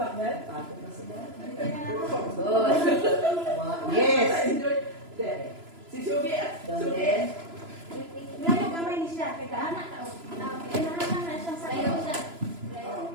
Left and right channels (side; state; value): left; late; 3.0 ms